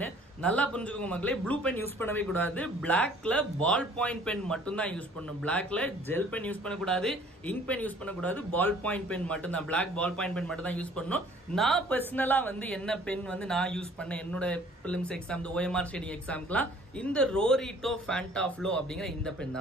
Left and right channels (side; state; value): both; normal; correlation 0.54